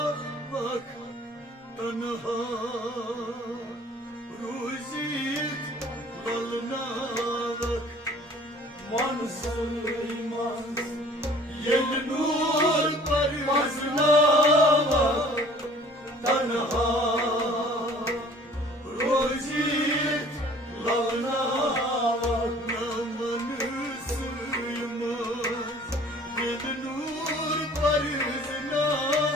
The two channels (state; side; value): normal; both; correlation 0.51